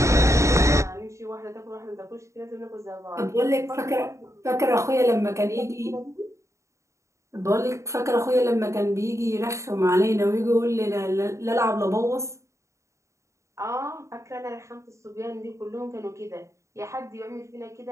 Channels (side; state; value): left; late; 0.14 ms